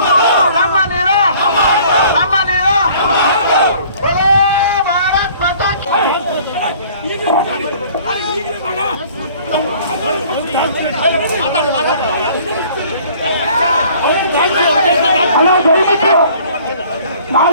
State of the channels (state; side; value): inverted; both; correlation -0.53